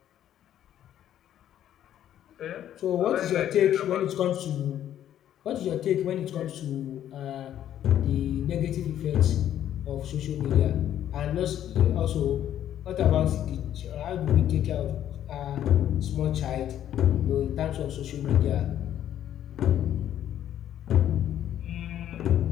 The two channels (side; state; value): right; quieter; 11.1 dB